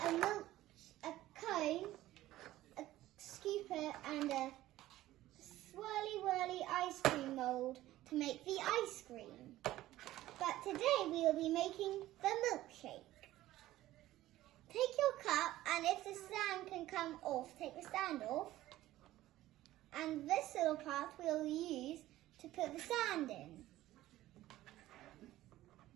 cone, a scooper, and a swirly ice cream mold to make the ice cream. But today we will be making the milkshake. Take your cup, and if the stand can come off, take the stand off. And this little part we'll use to put the sand in.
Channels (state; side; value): quieter; left; 15.3 dB